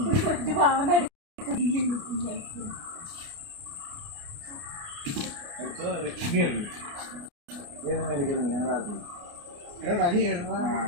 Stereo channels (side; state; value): left; late; 29 ms